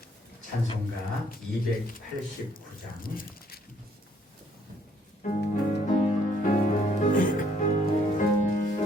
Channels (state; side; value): normal; both; correlation 0.66